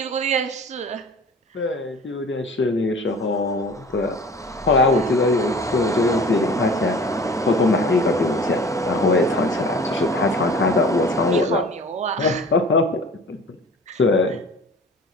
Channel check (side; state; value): both; normal; correlation 0.43